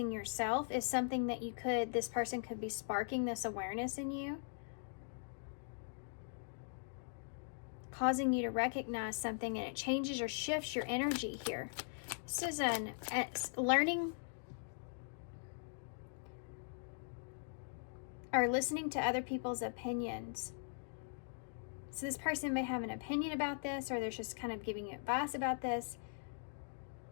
yourself is something that this person could be sparking this awareness in you. Causing you to recognize something, and it changes or shifts your energy here. This is learning or listening to other people's opinions. So this person may have an opinion about this, or they're just kind of giving you advice about this.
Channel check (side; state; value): right; silent; digital silence